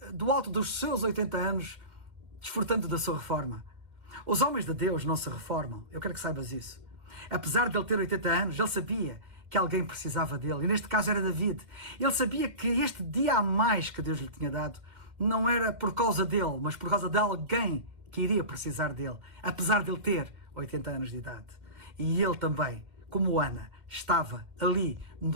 do alto dos seus 80 anos, desfrutando da sua reforma. Os homens de Deus não se reformam. Eu quero que saibas isso. Apesar de ele ter 80 anos, ele sabia que alguém precisava dele. E neste caso era David. Ele sabia que este dia a mais que Deus lhe tinha dado não era por causa dele, mas por causa de alguém que iria precisar dele. Apesar de ele ter 80 anos de idade. E ele também, como Ana, estava ali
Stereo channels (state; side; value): late; left; 2.1 ms